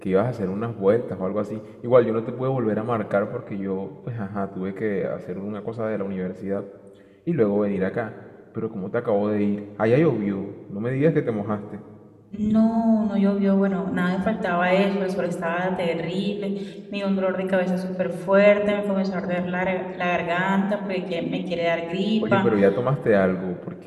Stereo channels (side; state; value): both; identical; correlation 1.00